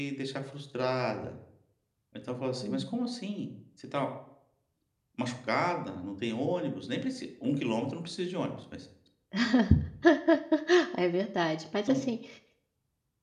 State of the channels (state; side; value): identical; both; correlation 1.00